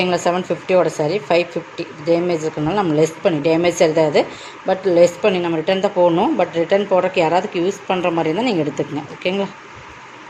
750 சாரி 550 டேமேஜ் இருக்கிறனால நம்ம லெஸ் பண்ணி, டேமேஜ் சரி தான் அது, பட் லெஸ் பண்ணி நம்ம ரிட்டன் தான் போடணும். பட் ரிட்டன் போடுறதுக்கு யாராவதுக்கு யூஸ் பண்ணுற மாதிரி இருந்தால் நீங்கள் எடுத்துக்கங்க. ஓகேங்களா?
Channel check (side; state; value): both; identical; correlation 1.00